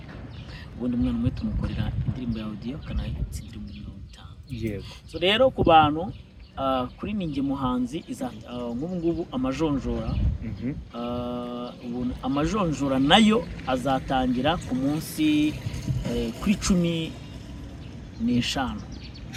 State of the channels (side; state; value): both; identical; correlation 1.00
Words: Ubundi umwana umwe tumukorera indirimbo ya audio kanayitsindira mu 50. Yego. So rero ku bantu kuri Ninjye Muhanzi ngubu amajonjora amajonjora nayo azatangira ku munsi kuri 15